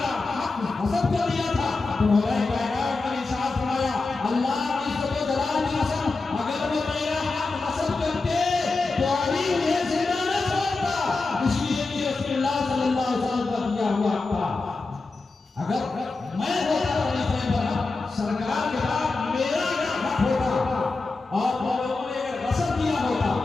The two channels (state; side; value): quieter; right; 3.7 dB